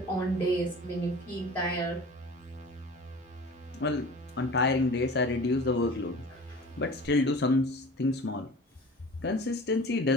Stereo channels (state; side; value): normal; both; correlation 0.40